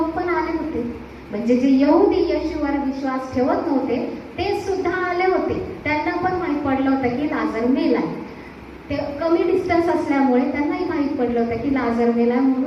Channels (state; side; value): identical; both; correlation 1.00